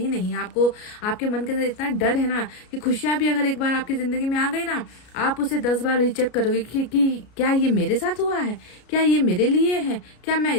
नहीं। आपको आपके मन के अंदर इतना डर है ना कि खुशियां भी अगर एक बार आपकी जिंदगी में आ गई ना, आप उसे 10 बार रीचेक करोगे कि क्या ये मेरे साथ हुआ है, क्या ये मेरे लिए है, क्या मैं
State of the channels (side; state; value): right; late; 33 ms